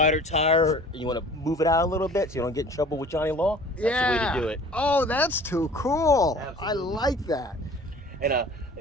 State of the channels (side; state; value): both; normal; correlation 0.47